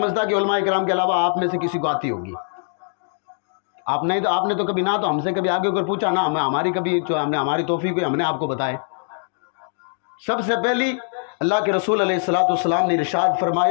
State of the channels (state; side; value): silent; right; digital silence